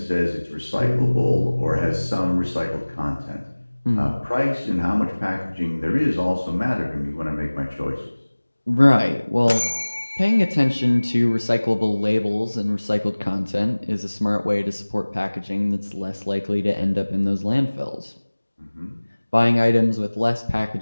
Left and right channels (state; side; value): inverted; both; correlation -1.00